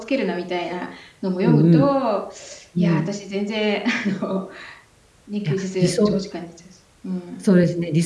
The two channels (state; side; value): identical; both; correlation 1.00